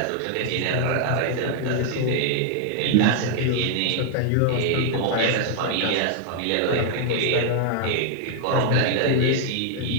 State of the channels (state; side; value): different; both; correlation 0.00